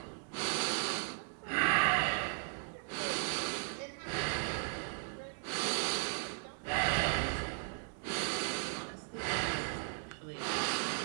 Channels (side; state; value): left; silent; 53 dB below the other